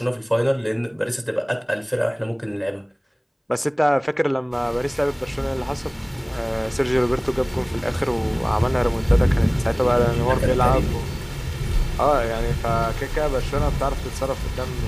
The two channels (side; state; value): both; identical; correlation 1.00